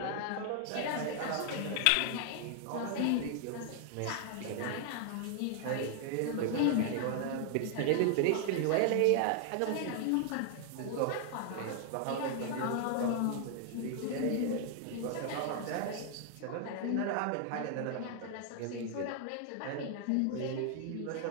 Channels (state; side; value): different; both; correlation 0.00